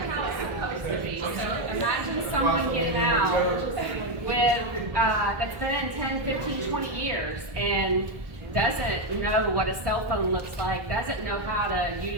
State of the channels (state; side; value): late; left; 1.3 ms